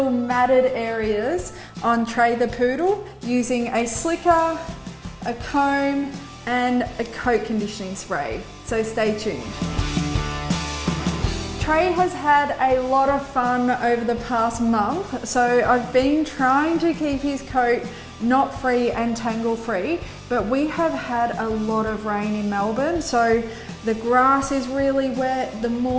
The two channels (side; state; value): both; identical; correlation 1.00